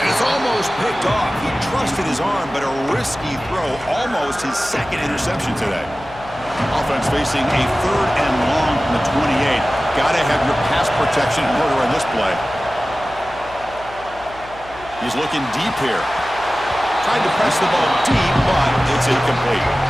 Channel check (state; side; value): noise; left; hum, 20 dB below the sound